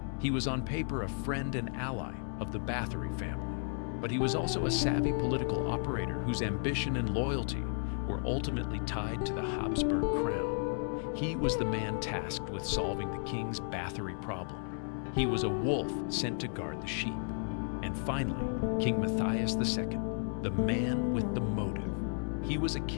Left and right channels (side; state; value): right; silent; 55 dB below the other